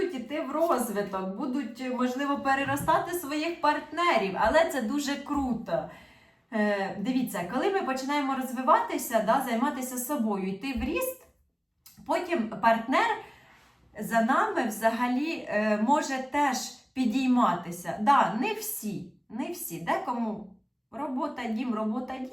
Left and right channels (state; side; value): identical; both; correlation 1.00